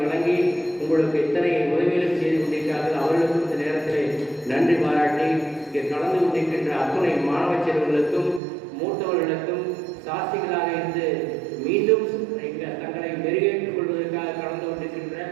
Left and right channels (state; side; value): drops out; left; at 8.4 s